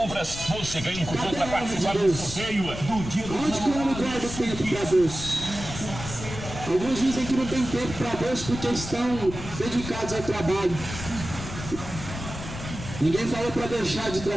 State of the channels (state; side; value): noise; left; rumble, 9 dB below the sound